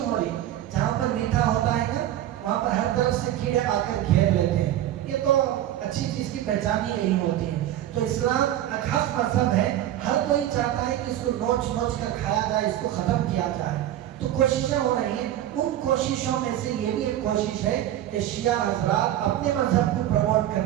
ہو رہی، جہاں پر میٹھا ہوتا ہے نا وہاں پر ہر طرف سے کیڑے آ کر گھیر لیتے ہیں، یہ تو اچھی چیز کی پہچان ہی یہی ہوتی ہے۔ تو اسلام ایک حق مذہب ہے، ہر کوئی چاہتا ہے کہ اس کو نوچ نوچ کر کھایا جائے، اس کو ختم کیا جائے، تو کوششیں ہو رہی ہیں۔ ان کوششوں میں سے یہ بھی ایک کوشش ہے کہ شیعہ حضرات اپنے مذہب کو پروموٹ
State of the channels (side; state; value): left; quieter; 12.5 dB